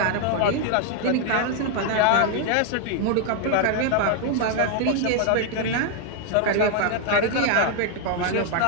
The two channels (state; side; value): different; both; correlation 0.00